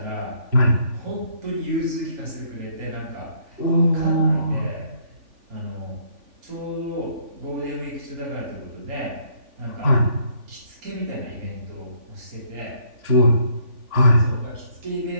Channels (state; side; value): late; left; 3.5 ms